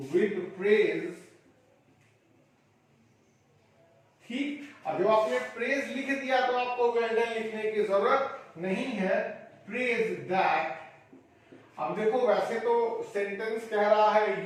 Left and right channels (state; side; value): identical; both; correlation 1.00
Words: with praise, ठीक। अब जब आपने प्रेज लिख दिया तो आपको वेल डन लिखने की जरूरत नहीं है, प्रेज दैट। अब देखो, वैसे तो सेंटेंस कह रहा